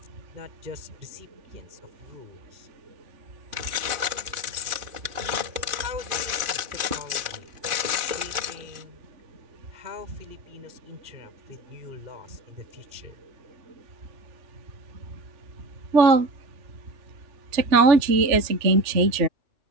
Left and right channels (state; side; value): late; left; 2.5 ms